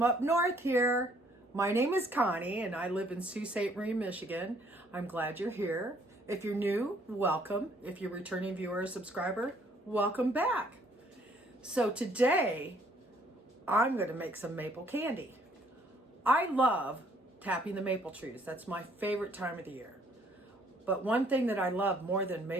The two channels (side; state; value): both; normal; correlation 0.63